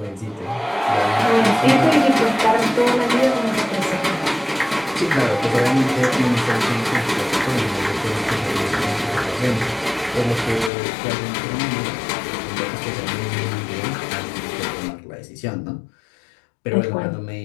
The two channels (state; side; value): drops out; right; at 10.7 s